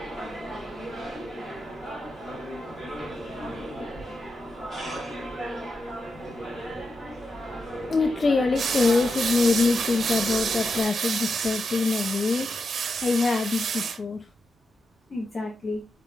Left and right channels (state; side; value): normal; both; correlation 0.87